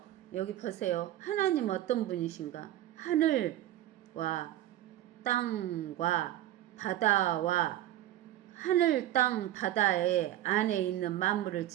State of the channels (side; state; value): left; quieter; 13.6 dB